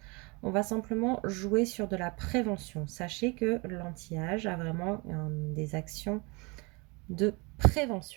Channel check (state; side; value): quieter; left; 28.2 dB